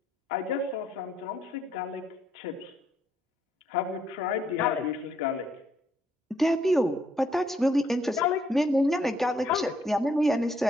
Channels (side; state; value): both; normal; correlation 0.71